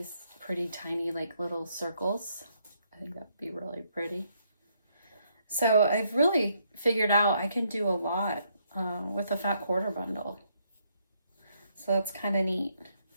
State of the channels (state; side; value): inverted; both; correlation -0.73